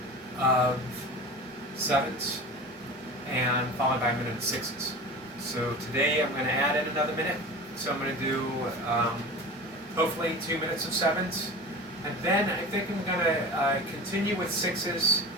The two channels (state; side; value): normal; both; correlation 0.33